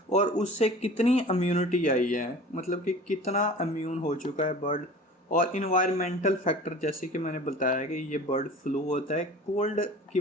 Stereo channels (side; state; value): both; normal; correlation 0.41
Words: और उससे कितनी इम्यूनिटी आई है, मतलब कि कितना इम्यून हो चुका है बर्ड। और इन्वायरमेंटल फैक्टर, जैसे कि मैंने बताया कि ये बर्ड फ्लू होता है, कोल्ड की